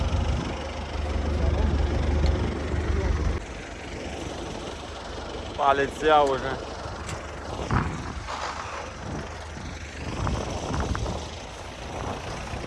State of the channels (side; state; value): both; identical; correlation 1.00